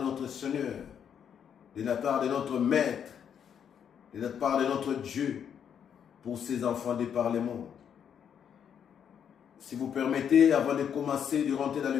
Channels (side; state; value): right; quieter; 8.2 dB